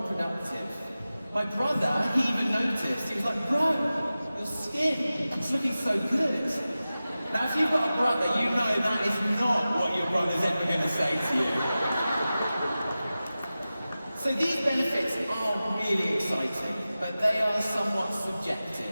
productive. My brother, he even noticed. He was like, bro, your skin is looking so good. Now, if you've got a brother, you know that is not what your brother's ever going to say to you. So these benefits are really exciting, but they are somewhat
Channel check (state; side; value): inverted; both; correlation -0.95